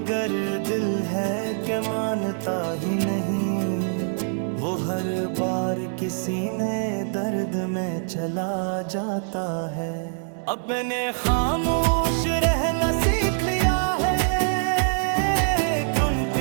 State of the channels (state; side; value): silent; left; 62 dB below the other